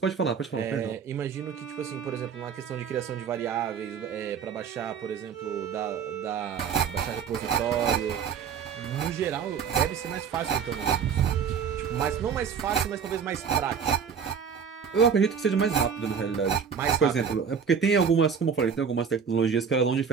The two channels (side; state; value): left; quieter; 6.9 dB